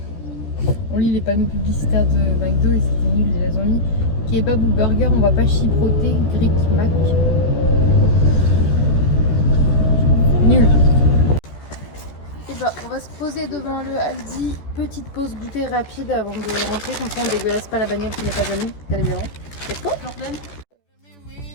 On lit les panneaux publicitaires de McDo et c'était nul, ils les ont mis. Kebab ou burger, on va pas chipoter, Greek Mac. Nul. Et bah, on va se poser devant le Aldi. Petite pause goûter rapide avant de rentrer, comme ça on dégueulasse pas la bagnole qui n'est pas à nous, bien évidemment. Et toi?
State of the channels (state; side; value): late; right; 14 ms